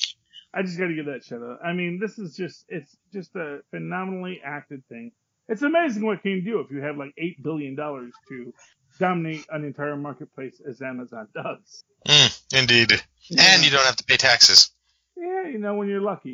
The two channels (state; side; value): identical; both; correlation 1.00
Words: I just gotta give that shout out. I mean, it's just a phenomenally acted thing. It's amazing what can you do if you have like $8 billion to dominate an entire marketplace as Amazon does. Indeed. Yeah. And you don't have to pay taxes. Yeah, when you're lucky,